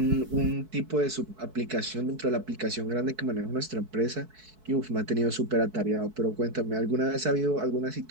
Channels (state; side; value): late; left; 4.6 ms